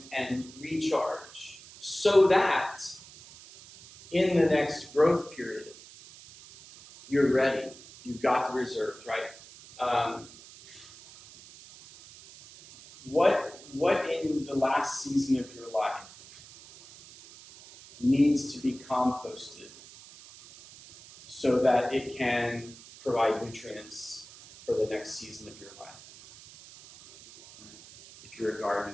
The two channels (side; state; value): right; noise; hiss, 19 dB below the sound